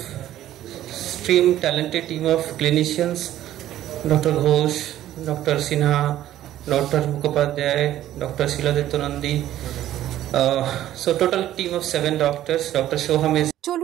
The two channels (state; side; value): quieter; left; 12.8 dB